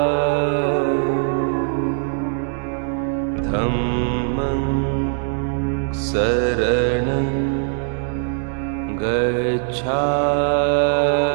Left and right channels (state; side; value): silent; left; 65 dB below the other